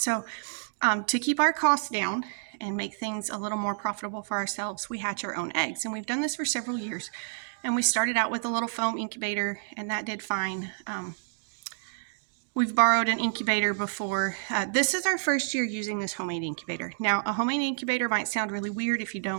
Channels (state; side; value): silent; left; digital silence